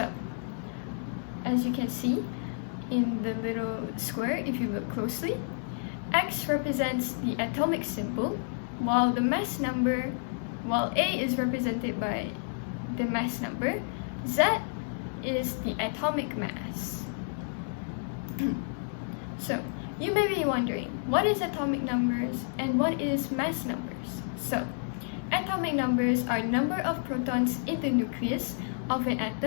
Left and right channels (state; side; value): silent; right; digital silence